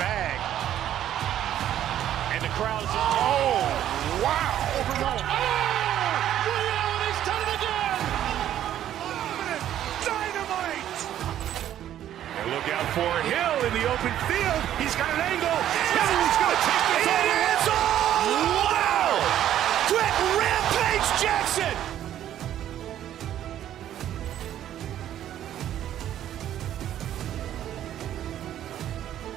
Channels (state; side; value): quieter; left; 11.4 dB